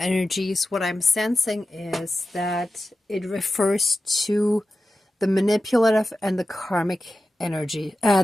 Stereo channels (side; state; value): both; normal; correlation 0.93